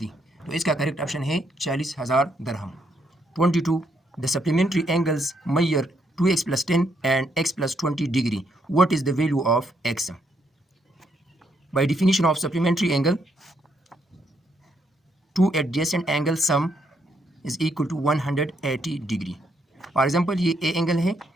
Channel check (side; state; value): both; normal; correlation 0.75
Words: तो इसका करेक्ट ऑप्शन है 40,000 दरहम। 22, the supplementary angles measure 2x + 10 and x + 20 degree, what is the value of x? By definition of supplementary angle, two adjacent angle sum is equal to 180 degree. For example ये A angle है